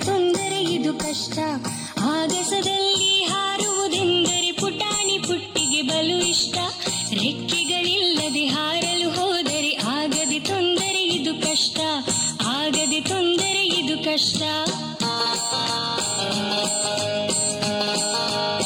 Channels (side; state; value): both; identical; correlation 1.00